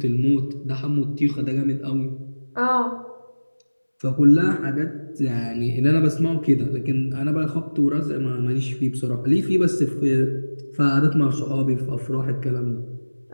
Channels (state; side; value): inverted; both; correlation -1.00